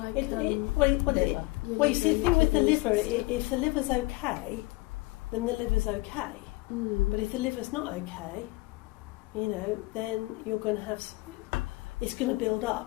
Liver. Well, you see, the your thing with the kidneys liver, and stuff. if the liver's okay, then the liver's okay. But if the liver's not okay, you know, then you're going to have, it's going to build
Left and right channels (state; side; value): quieter; right; 22.6 dB